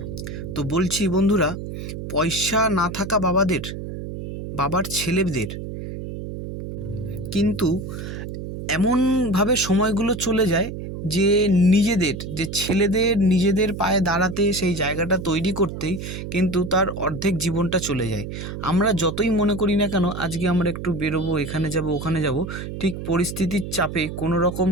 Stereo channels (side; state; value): right; noise; hum, 8 dB below the sound